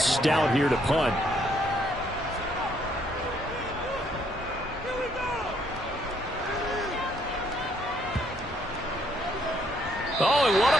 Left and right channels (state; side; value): normal; both; correlation 0.69